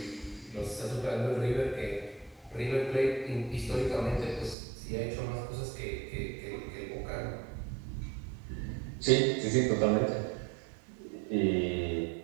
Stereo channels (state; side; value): drops out; left; at 4.5 s